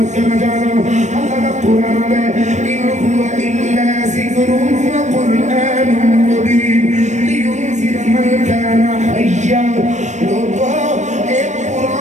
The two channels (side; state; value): left; late; 0.34 ms